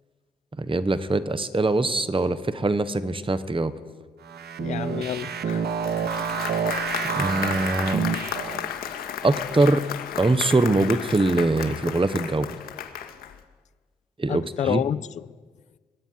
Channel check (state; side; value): normal; both; correlation 0.72